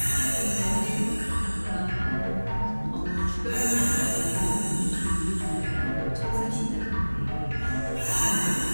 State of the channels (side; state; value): both; inverted; correlation -1.00